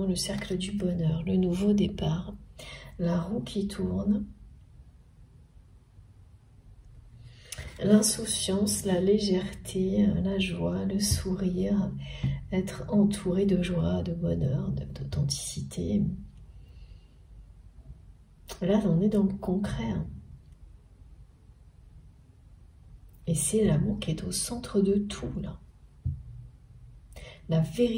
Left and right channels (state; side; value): identical; both; correlation 1.00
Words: le cercle du bonheur, le nouveau départ, la roue qui tourne, l'insouciance, la légèreté, la joie, le sourire, être entouré de joie, de bonheur, d'authenticité. Là, on est dans le concret. Hein. Et c'est l'amour qui est au centre de tout, là. La